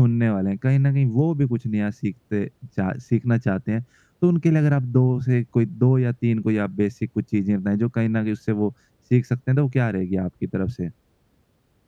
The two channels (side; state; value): both; identical; correlation 1.00